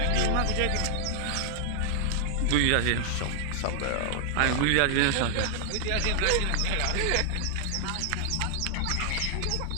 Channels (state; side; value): different; both; correlation 0.00